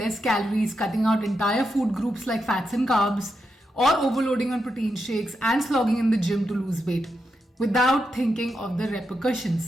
calories, cutting out entire food groups like fats and carbs, or overloading on protein shakes and slogging in the gym to lose weight, without thinking of the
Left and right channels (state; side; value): normal; both; correlation 0.85